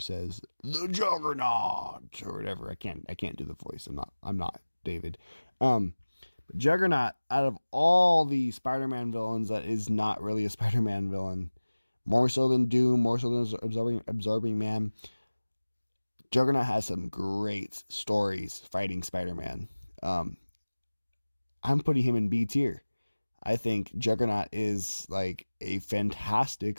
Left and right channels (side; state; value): both; inverted; correlation -1.00